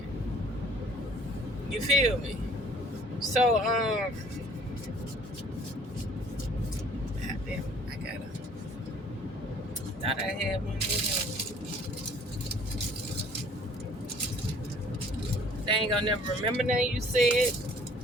You feel me? So, goddamn, thought I had one here. They ain't gonna never remember nothing you said.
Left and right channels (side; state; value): both; normal; correlation 0.55